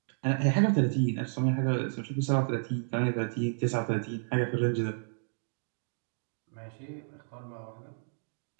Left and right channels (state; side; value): silent; left; digital silence